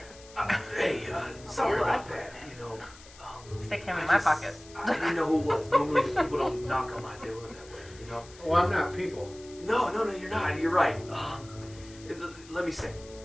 Hey, sorry about that. You know, Stick him in I my just- pocket. I didn't know who it was. Normally people don't knock on my door that way, you know? Well, I'm not people. No, you're not. You're right. Let me say,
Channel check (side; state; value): left; noise; hiss, 21 dB below the sound